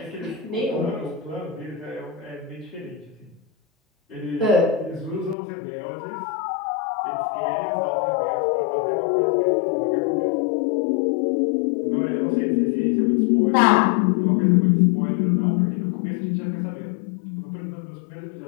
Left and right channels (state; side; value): drops out; right; at 5.4 s